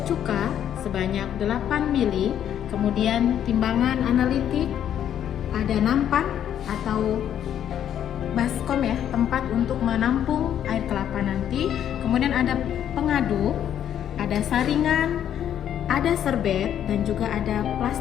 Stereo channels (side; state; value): right; quieter; 10.0 dB